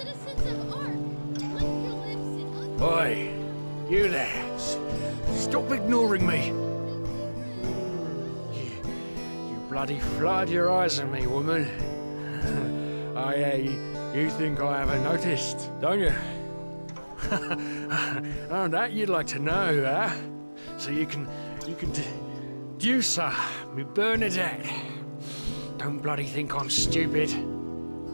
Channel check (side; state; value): both; inverted; correlation -1.00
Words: of Ark, lick your lips in Oi, you there. Stop ignoring me. You bloody flood your eyes at me, woman. You think I haven't noticed, don't you? Oh, that you'd like to know, huh? So you can deduce her, me Bernadette. Don't bloody think I'm stupid.